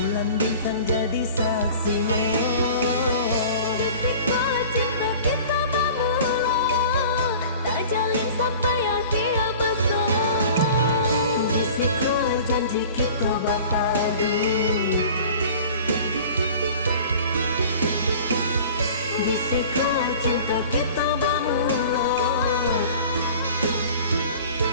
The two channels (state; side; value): inverted; both; correlation -0.43